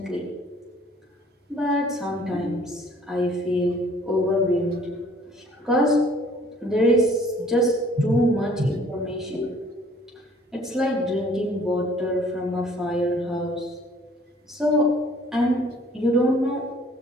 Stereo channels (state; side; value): normal; both; correlation 0.57